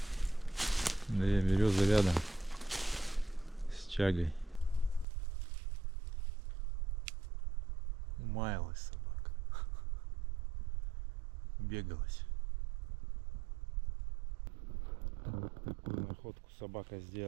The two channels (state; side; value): drops out; left; at 5.1 s